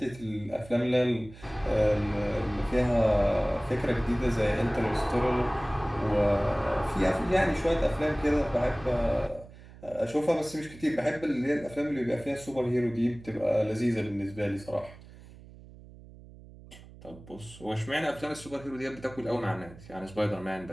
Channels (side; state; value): right; noise; hum, 19 dB below the sound